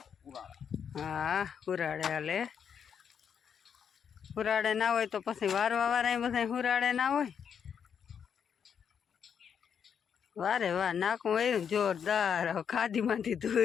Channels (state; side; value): quieter; right; 7.5 dB